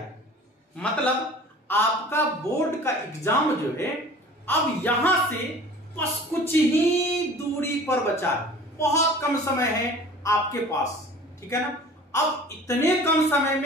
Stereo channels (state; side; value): normal; both; correlation 0.44